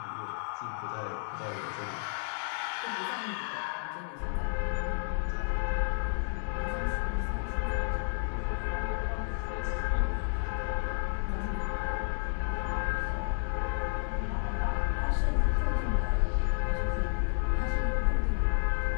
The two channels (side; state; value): right; silent; digital silence